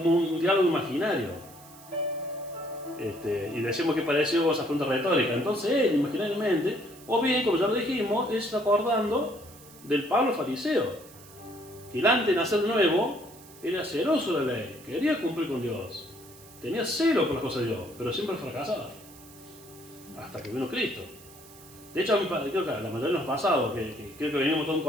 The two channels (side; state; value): right; noise; hiss, 21 dB below the sound